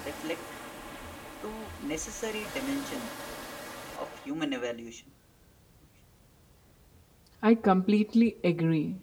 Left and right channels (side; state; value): both; identical; correlation 1.00